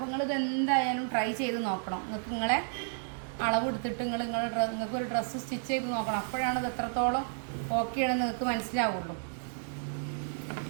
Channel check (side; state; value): left; silent; digital silence